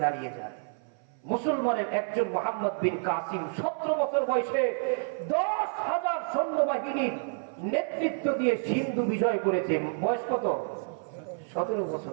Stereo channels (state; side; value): silent; left; 56 dB below the other